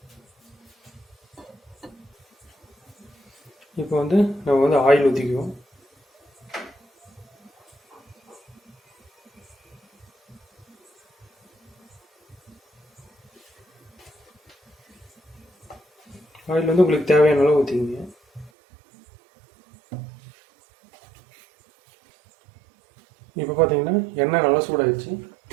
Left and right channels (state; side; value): drops out; left; at 18.5 s